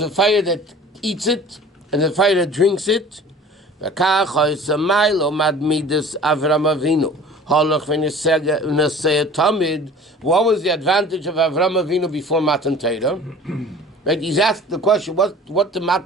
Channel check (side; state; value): both; normal; correlation 0.45